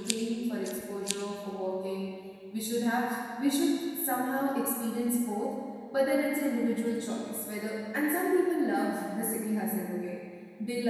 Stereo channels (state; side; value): identical; both; correlation 1.00